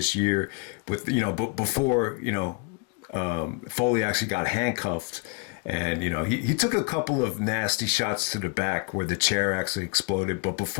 year with, you know, before, you know, Foley actually got handcuffed. And, you know, he took a couple of nasty shots to the back where the chair actually exploded. But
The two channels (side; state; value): right; quieter; 31.1 dB